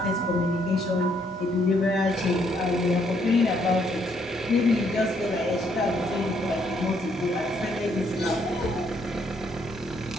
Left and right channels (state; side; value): normal; both; correlation 0.71